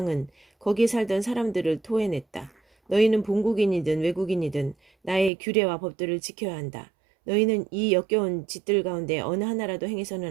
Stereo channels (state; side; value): drops out; left; at 5.3 s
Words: 거기에 살던 사람들을 토해냈다. 너희는 본국인이든 외국인이든 나의 규례와 법들을 지켜야 한다. 너희는 이 역겨운 짓들 가운데 어느 하나라도